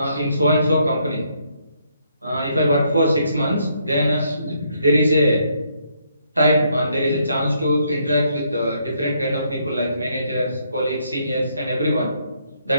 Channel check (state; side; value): inverted; both; correlation -0.72